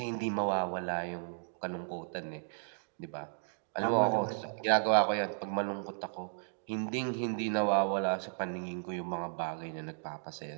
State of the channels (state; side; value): silent; left; digital silence